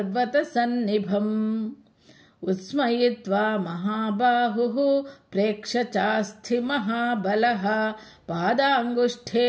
उत्स्मयित्वा महाबाहुः प्रेक्ष्य चास्थि महाबलः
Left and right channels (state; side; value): identical; both; correlation 1.00